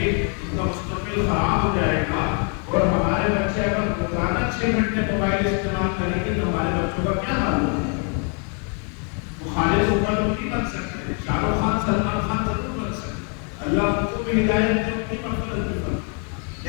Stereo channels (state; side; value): quieter; right; 39.9 dB